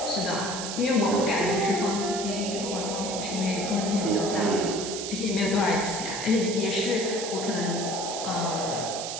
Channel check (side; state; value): right; noise; hiss, 6 dB below the sound